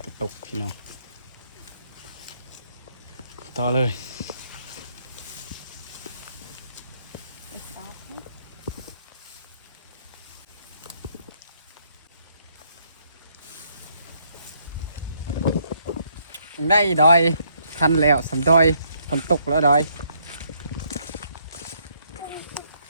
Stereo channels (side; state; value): both; inverted; correlation -0.71